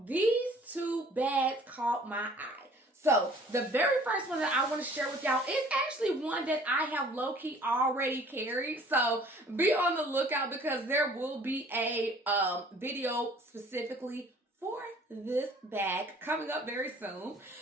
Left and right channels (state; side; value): normal; both; correlation 0.53